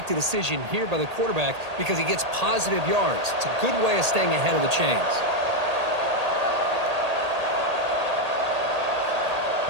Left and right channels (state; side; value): late; left; 1.8 ms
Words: the decision here by the quarterback because he gets positive yards. It's a good way of staying ahead of the chains.